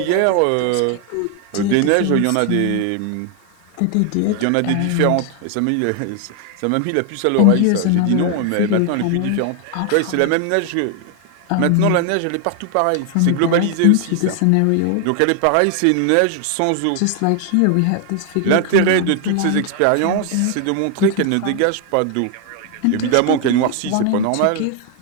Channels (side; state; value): both; different; correlation 0.00